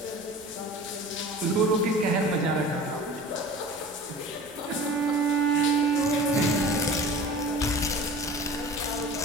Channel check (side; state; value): both; normal; correlation 0.40